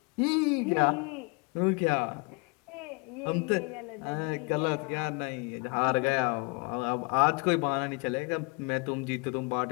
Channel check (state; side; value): quieter; right; 31.8 dB